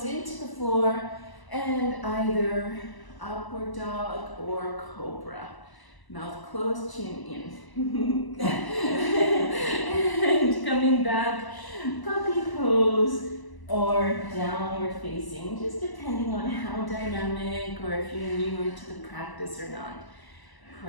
into the floor and either upward dog or cobra. Mouth closed, chin in. And coming back, puppy pose or downward facing, just depending on how dynamic or if you're newer to the practice or not.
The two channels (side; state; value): right; late; 1.0 ms